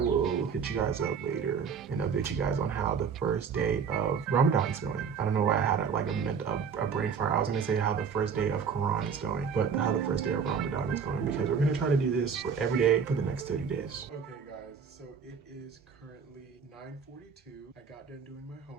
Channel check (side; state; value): left; quieter; 6.4 dB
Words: hit you guys up later and update you guys on how the first day of Ramadan is going. I don't know why I had a brain fart. I was gonna say how the first day of Quran is going, but how the first day of Ramadan is going, because we're gonna try to do this for every day for the next 30 days. Okay guys, so it is currently 9:42. I got done doing my